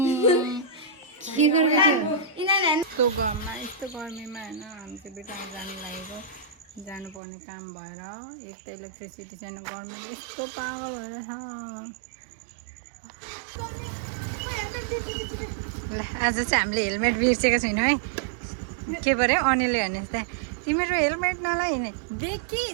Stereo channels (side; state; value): left; drops out; at 7.2 s